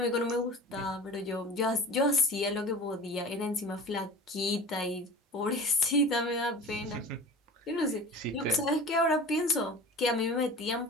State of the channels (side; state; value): both; normal; correlation 0.37